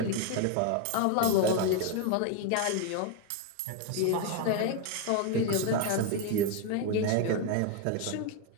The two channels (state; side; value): different; both; correlation 0.01